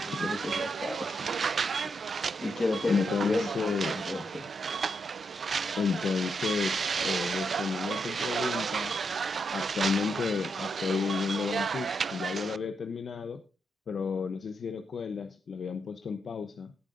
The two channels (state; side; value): normal; both; correlation 0.81